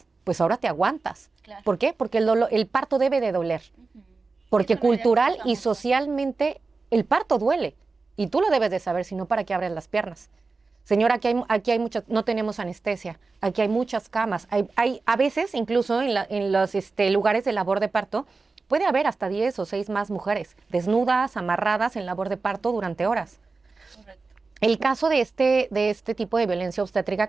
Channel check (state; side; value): quieter; left; 4.0 dB